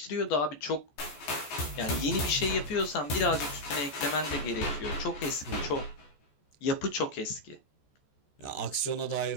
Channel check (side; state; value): right; late; 14 ms